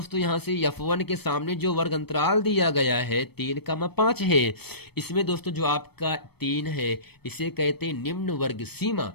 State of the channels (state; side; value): late; right; 0.97 ms